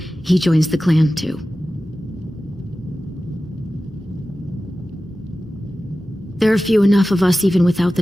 joins the clan too. There are few enough of us even without the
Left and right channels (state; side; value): normal; both; correlation 0.95